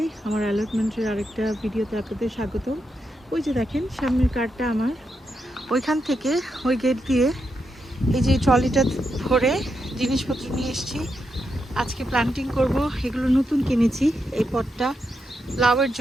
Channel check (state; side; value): normal; both; correlation 0.84